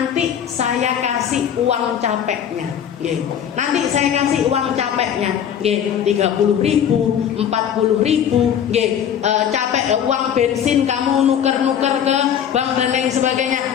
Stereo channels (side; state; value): right; quieter; 9.0 dB